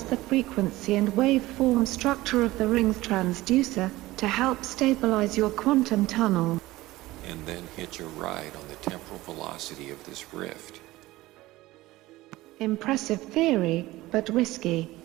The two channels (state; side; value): quieter; left; 18.2 dB